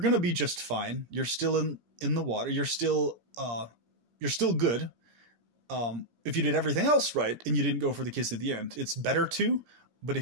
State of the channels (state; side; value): late; left; 17 ms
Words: to be just fine. You're still in the water. You're still good. If you did everything else right and you didn't go for the kiss at the end, it's better to, but